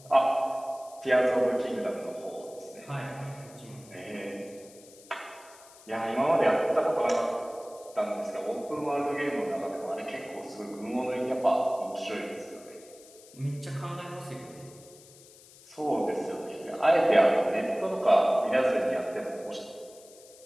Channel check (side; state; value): left; noise; hiss, 22 dB below the sound